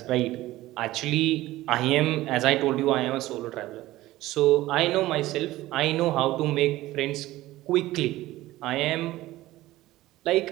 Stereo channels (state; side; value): quieter; left; 16.7 dB